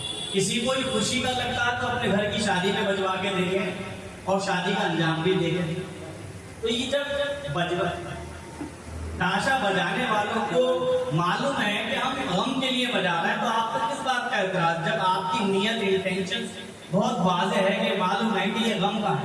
किसी को भी खुशी का लगता है तो अपने घर की शादी में बजवा के देखें और शादी का अंजाम भी देखें। तो ये जब ताशा बजाने वालों को मालूम है कि हम गम के लिए बजा रहे हैं, तो आपको किस बात का एतराज, जब आपकी नियत इंटेंशन बहुत वाज़ेह है कि मालूम है कि ये गम का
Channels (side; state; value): both; identical; correlation 1.00